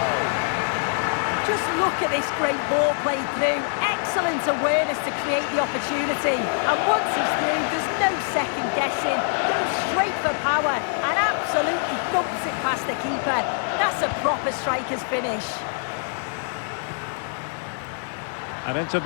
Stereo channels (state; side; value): silent; right; 62 dB below the other